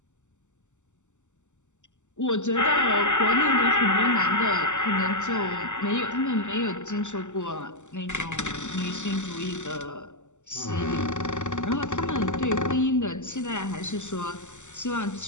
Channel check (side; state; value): right; late; 0.84 ms